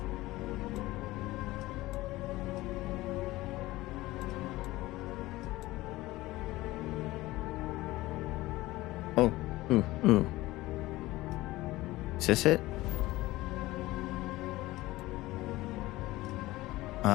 Oh, ooh. Is this it?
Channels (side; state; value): right; quieter; 18.4 dB